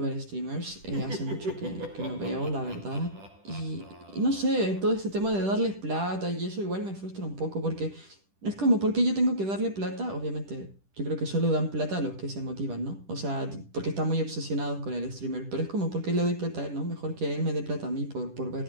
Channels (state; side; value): late; left; 10 ms